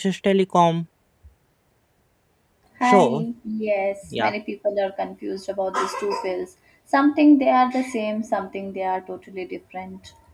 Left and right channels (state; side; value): identical; both; correlation 1.00